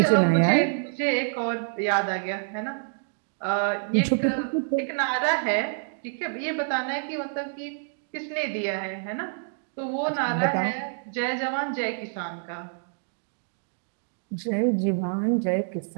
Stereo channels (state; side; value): silent; left; digital silence